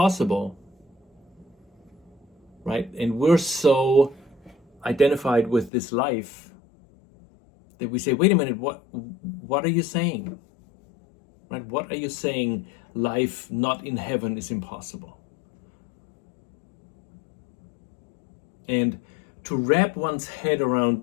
right? And we're so identified with this life that we say, wait a minute, what are you saying? Right? What are you saying life not in heaven is impossible? And to wrap one's head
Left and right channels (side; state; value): right; drops out; at 5.7 s